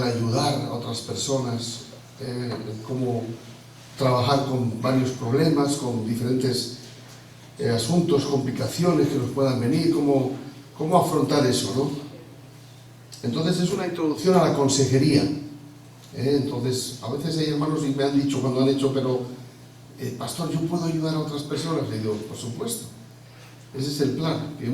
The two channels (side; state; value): both; identical; correlation 1.00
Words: ayudar a otras personas, el cómo trabajar con varios problemas, con diferentes asuntos, complicaciones que nos puedan venir, cómo afrontar eso, ¿no? Entonces es una introducción a la consejería. Entonces, a veces hay hermanos y me han dicho cuando han hecho, pero pastor, ¿yo puedo ayudar a otras personas? Le digo, por supuesto. Ese es el plan, que